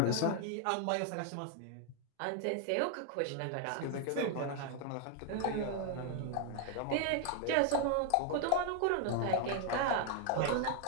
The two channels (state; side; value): different; both; correlation 0.00